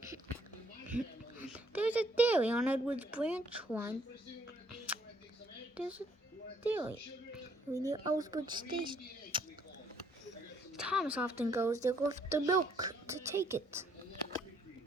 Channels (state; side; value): normal; both; correlation 0.67